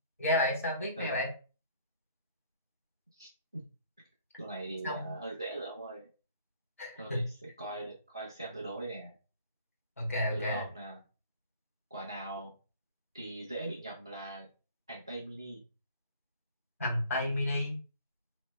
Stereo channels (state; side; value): inverted; both; correlation -0.53